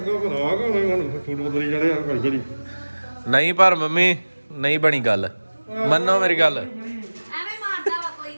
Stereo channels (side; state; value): both; inverted; correlation -1.00